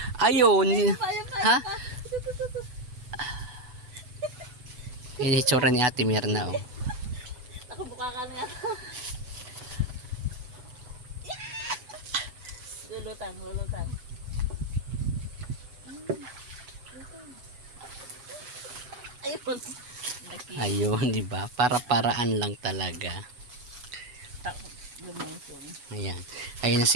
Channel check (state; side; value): late; left; 8.1 ms